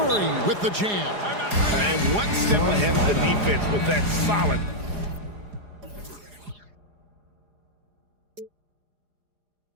with the jam. And one step ahead of the defense with that solid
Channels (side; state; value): left; late; 4.9 ms